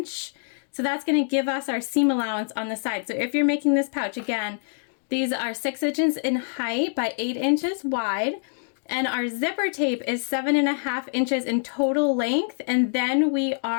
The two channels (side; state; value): right; silent; digital silence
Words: So that's going to give us our seam allowance on the side. So if you're making this pouch, again, these are 6 inches in height by 8 inches wide. And our zipper tape is 7.5 inches in total length. And then we